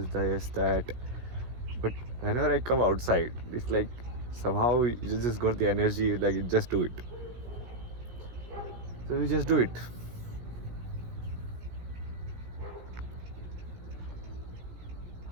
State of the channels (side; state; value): left; late; 17 ms